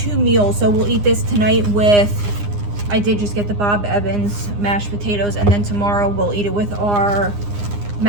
meals. So we'll eat this tonight with, I did just get the Bob Evans mashed potatoes, and then tomorrow we'll eat it with our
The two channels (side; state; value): left; late; 9.8 ms